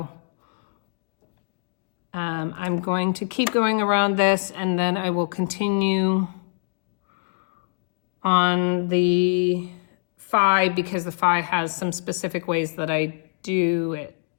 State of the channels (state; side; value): silent; right; digital silence